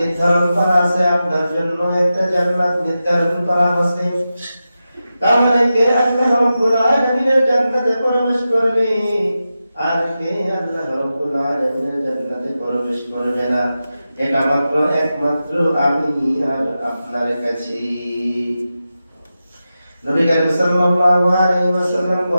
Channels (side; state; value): both; inverted; correlation -0.92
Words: করা আছে, আপনার জন্য একটা জান্নাত নির্ধারণ করা আছে। তাহলে কে আল্লাহ রাব্বুল আলামিনের জান্নাতে প্রবেশ করবে আর কে আল্লাহ রাব্বুল আলামিনের জান্নাতে প্রবেশ করবে না, এটা মাত্র একমাত্র আমি আর আপনার কাছে। নবী করিম সাল্লাল্লাহু আলাইহি ওয়াসাল্লাম